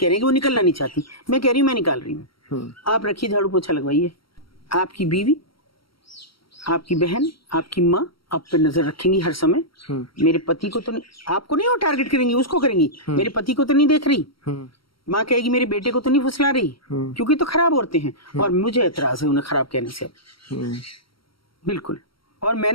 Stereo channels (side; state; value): right; late; 0.74 ms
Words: हैं कि वो निकलना नहीं चाहती, मैं कह रही हूँ मैं निकाल रही हूँ, आप रखिए झाड़ू पोछा लगवाइए। आपकी बीवी, आपकी बहन, आपकी माँ आप पे नजर रखेंगी हर समय। मेरे पति को तो नहीं, आपको नहीं वो टारगेट करेंगी, उसको करेंगी, मेरे पति को तो नहीं देख रही। माँ कहेगी मेरे बेटे को तो नहीं फुसला रही, क्योंकि तो खराब औरतें हैं और मुझे एतराज है उन्हें खराब कहने से। बिल्कुल। और